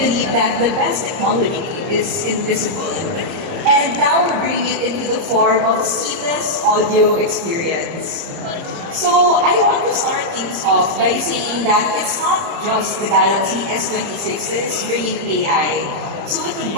believe that the best technology is invisible. And now we're bringing it into the form of seamless audio experience. So I want to start things off by saying that it's not just the Galaxy S26 that is bringing AI. So with the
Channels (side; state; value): left; late; 30 ms